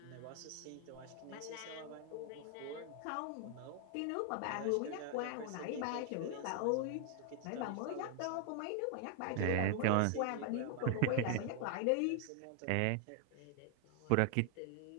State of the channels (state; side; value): different; both; correlation 0.00